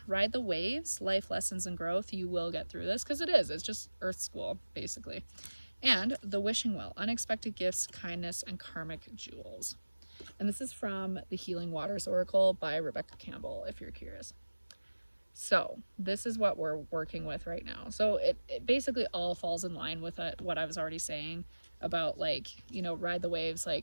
ride the waves, life lessons and growth. You will get through this, because it's just earth school basically. And the wishing well, unexpected gifts, kindness, and karmic jewels. And this is from the Healing Waters Oracle by Rebecca Campbell, if you're curious. So this is what we're working with right now. So it basically all falls in line with what I was already saying about like, you know, ride the waves,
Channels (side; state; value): both; inverted; correlation -1.00